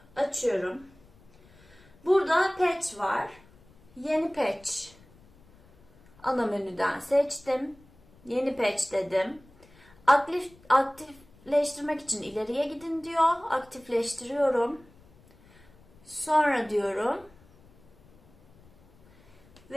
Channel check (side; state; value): left; noise; rumble, 27 dB below the sound